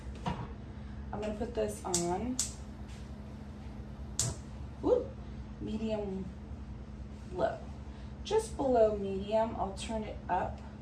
I'm gonna put this on medium low. Just below medium, I'll turn it up.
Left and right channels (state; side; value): identical; both; correlation 1.00